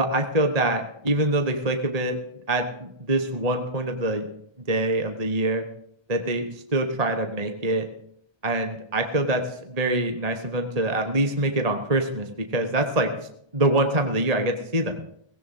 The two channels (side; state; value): left; late; 1.8 ms